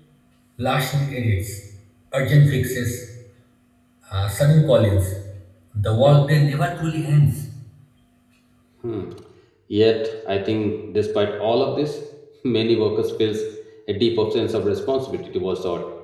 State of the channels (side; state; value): both; identical; correlation 1.00